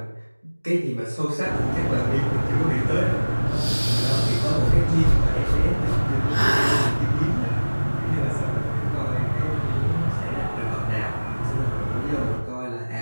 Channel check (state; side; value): inverted; both; correlation -1.00